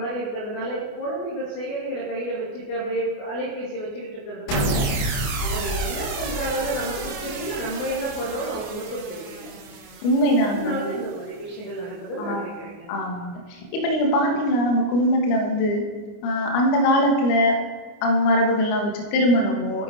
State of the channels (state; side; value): late; right; 28 ms